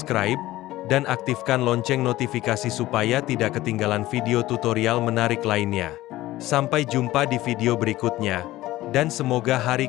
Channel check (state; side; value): quieter; right; 16.6 dB